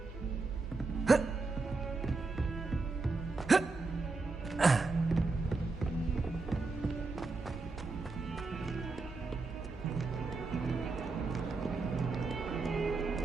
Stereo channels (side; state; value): left; quieter; 3.8 dB